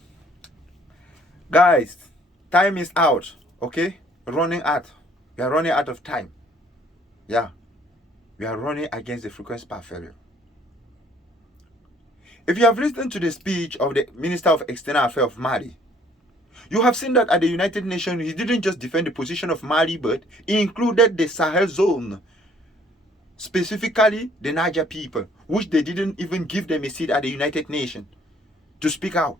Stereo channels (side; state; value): both; normal; correlation 0.60